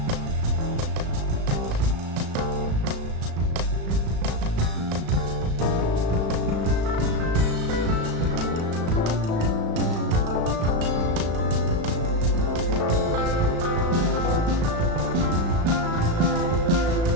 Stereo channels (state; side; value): late; left; 36 ms